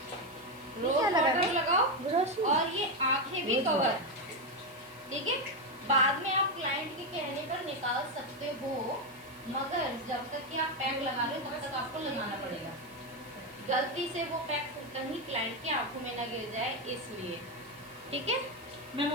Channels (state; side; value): noise; right; hiss, 24 dB below the sound